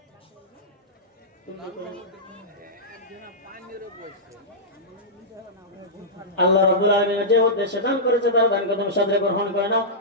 আল্লাহ রাব্বুল আলামিন যে উদ্দেশ্যে দান করেছে তার দানকে তুমি সাদরে গ্রহণ করে নাও।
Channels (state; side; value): normal; both; correlation -0.13